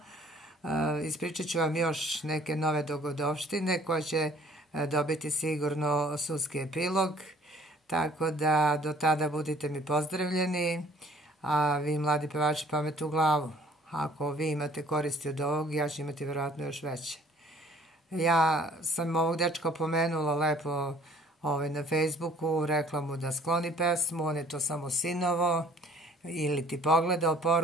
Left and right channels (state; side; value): normal; both; correlation 0.56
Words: Ispričat ću vam još neke nove dogodovštine koje će dobiti sigurno sudski epilog, tako da do tada budite mi pozdravljeni, a vi mladi pevači pamet u glavu. Ako vi imate koristi od ovog, ja ću imati vjerojatno još veće. Ja sam ovog dečka pomenula lepo na Facebooku, rekla mu da skloni pesmu, on je to samo sinovo ili ti pogledao